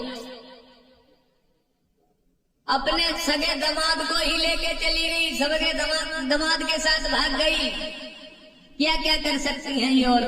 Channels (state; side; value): identical; both; correlation 1.00